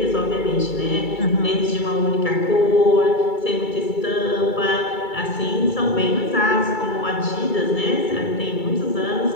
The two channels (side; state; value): right; late; 2.3 ms